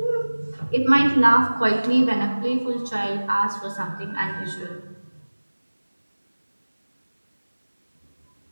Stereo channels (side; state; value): both; inverted; correlation -1.00